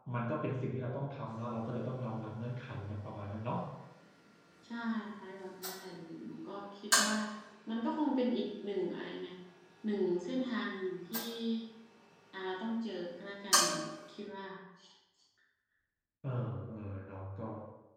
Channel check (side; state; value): both; identical; correlation 1.00